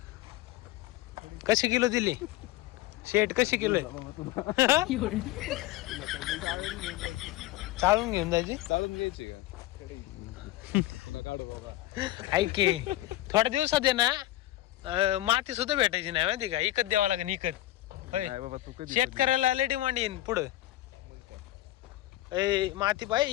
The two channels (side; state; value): right; quieter; 16.0 dB